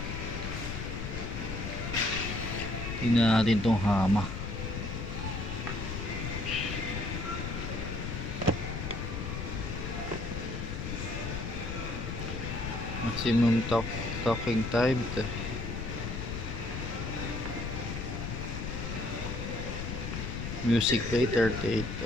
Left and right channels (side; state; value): left; noise; rumble, 4 dB below the sound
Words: Tingnan natin tong hama. Maximum talking time. Music play 38